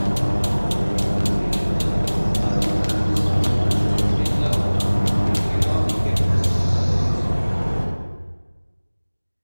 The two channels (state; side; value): inverted; both; correlation -1.00